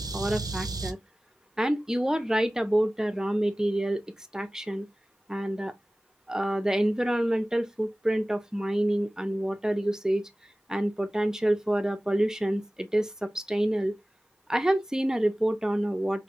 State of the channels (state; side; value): normal; both; correlation 0.97